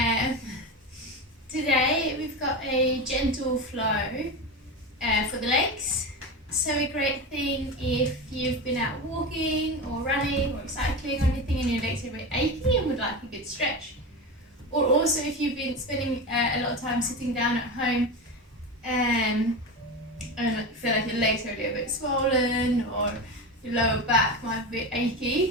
Today we've got a gentle flow for the legs. So a great thing if you've been out walking or running or cycling or anything and your legs are a bit achy and would like a good stretch. Or also if you've been spending a lot of time sitting down at home and feel like your legs are a little bit swollen or your lower back might be a bit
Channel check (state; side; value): normal; both; correlation 0.22